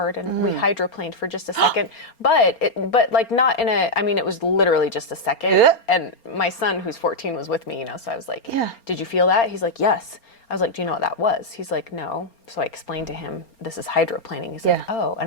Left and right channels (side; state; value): right; late; 4.3 ms